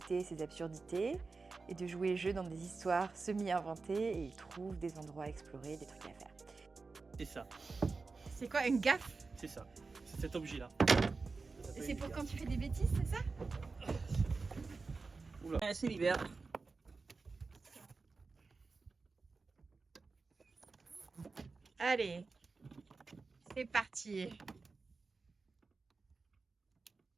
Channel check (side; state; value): left; quieter; 4.1 dB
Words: ses absurdités et de jouer le jeu dans des histoires semi-inventées et il trouve des endroits à explorer, des trucs à faire. C'est ça. C'est quoi, une gaffe? C'est ça. C'est cet objet-là. Et c'est pour quand tu fais des bêtises, c'est ça? Oula. C'est l'hiver. Allez, c'est parti.